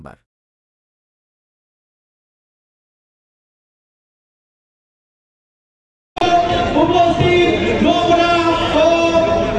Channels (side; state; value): both; identical; correlation 1.00